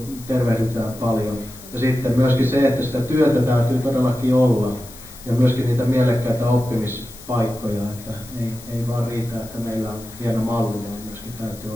tervehdytään paljon. Ja sitten myöskin se, että sitä työtä täytyy todellakin olla ja myöskin niitä mielekkäitä oppimispaikkoja, että ei vaan riitä, että meillä on hieno malli, vaan myöskin täytyy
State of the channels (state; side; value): noise; left; hiss, 18 dB below the sound